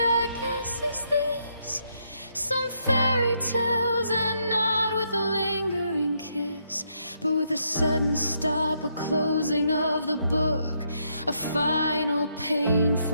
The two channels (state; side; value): inverted; both; correlation -0.76